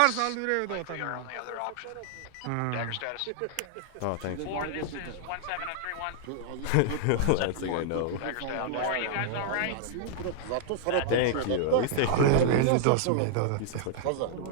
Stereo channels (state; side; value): different; both; correlation -0.01